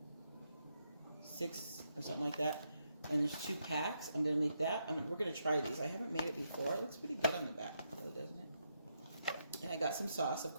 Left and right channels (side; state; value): both; inverted; correlation -0.81